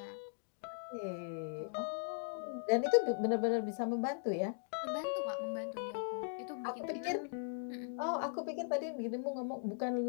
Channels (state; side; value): silent; right; digital silence